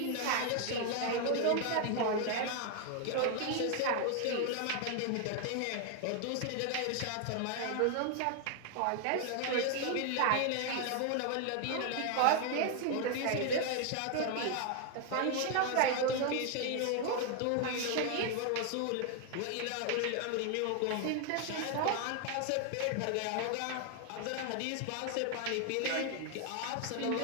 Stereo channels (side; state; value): both; different; correlation 0.00